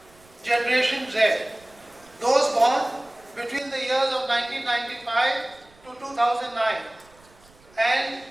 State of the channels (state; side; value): noise; right; rumble, 28 dB below the sound